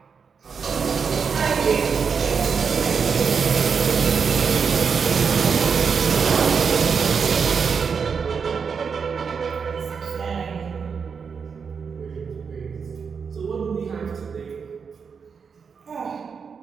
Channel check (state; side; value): quieter; left; 6.0 dB